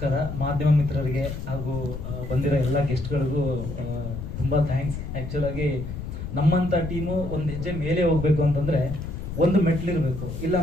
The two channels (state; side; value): noise; left; rumble, 7 dB below the sound